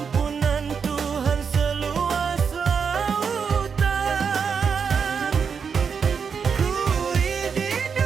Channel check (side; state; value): left; quieter; 6.2 dB